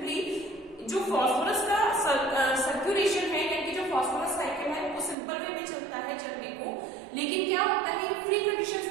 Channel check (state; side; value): drops out; left; at 5.2 s